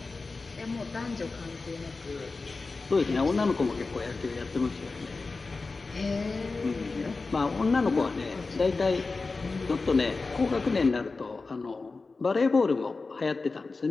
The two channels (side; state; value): right; quieter; 3.9 dB